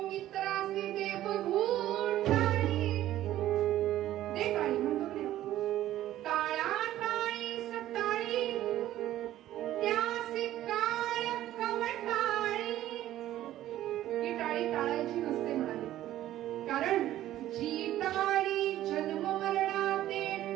मित्रासी दे बघून टाळी. दे टाळी म्हणतो की टाळा टाळी सटाळी, त्यासी काळ कवटाळी. ही टाळी टाळायची नसते म्हणाले, कारण जी टाळी जन्म मरणाते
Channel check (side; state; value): left; quieter; 13.6 dB